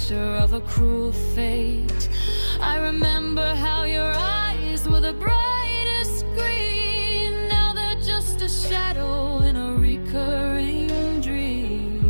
of a cruel fate. I remember how your eyes were the brightest green. Now they're just a shadow in a recurring dream.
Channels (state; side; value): inverted; both; correlation -1.00